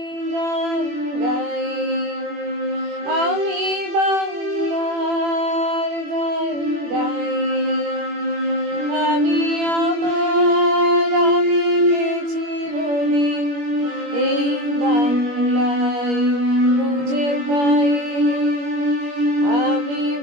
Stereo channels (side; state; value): left; late; 21 ms